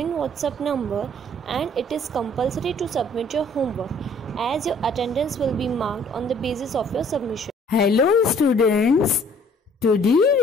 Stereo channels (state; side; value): normal; both; correlation 0.57